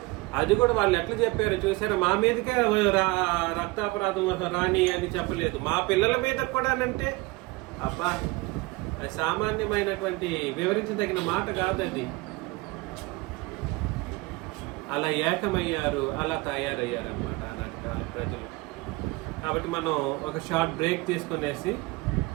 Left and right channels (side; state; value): left; quieter; 22.8 dB